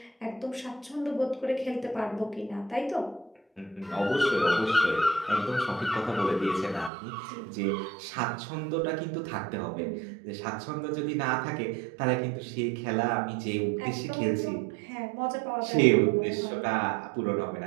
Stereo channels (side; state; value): left; drops out; at 6.9 s